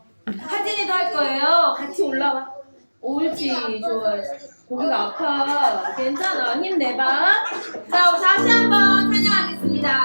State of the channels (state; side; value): inverted; both; correlation -1.00